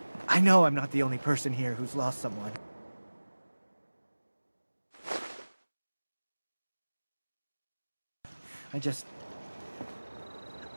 I know I'm not the only person here who's lost someone. I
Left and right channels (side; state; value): both; inverted; correlation -1.00